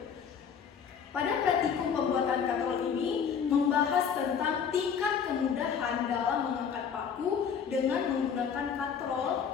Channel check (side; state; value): right; quieter; 7.2 dB